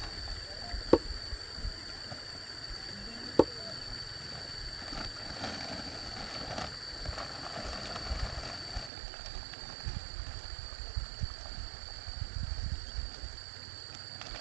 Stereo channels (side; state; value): left; drops out; at 8.9 s